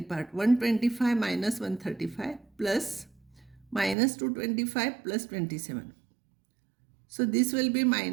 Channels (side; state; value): left; drops out; at 4.0 s